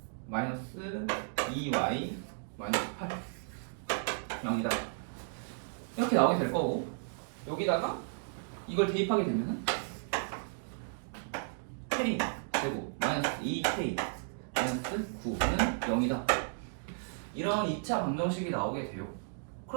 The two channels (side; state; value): left; silent; digital silence